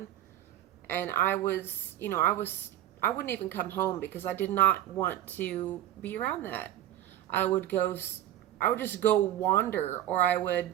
And I wouldn't even come home because I did not want to be around that. I would just go wander, or I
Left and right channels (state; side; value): quieter; left; 12.6 dB